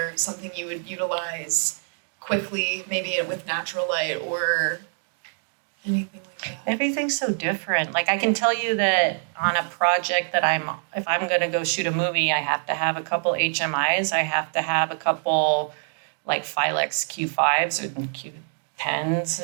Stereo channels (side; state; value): left; silent; digital silence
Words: something you would utilize quickly, maybe with natural light or anything like that? Everything's so different. Like I can tell you that on a project that if I'm gonna go shoot a movie, I have to have a couple HMIs. I have to have a couple like Filex Q5s or Q10s,